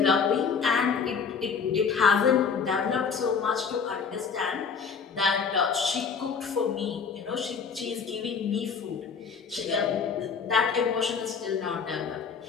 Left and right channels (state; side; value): quieter; right; 5.9 dB